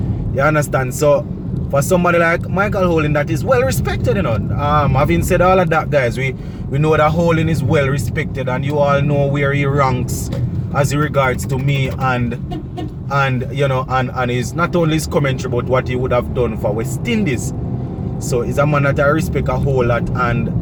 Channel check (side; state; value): both; identical; correlation 1.00